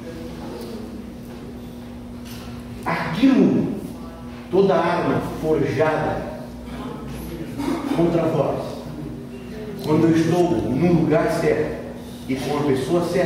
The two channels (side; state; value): both; identical; correlation 1.00